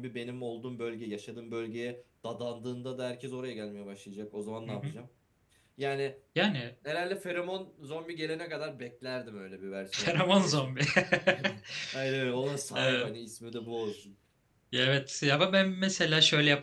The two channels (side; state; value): both; identical; correlation 1.00